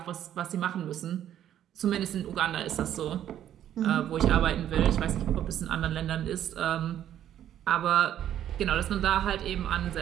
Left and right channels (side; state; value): left; quieter; 11.0 dB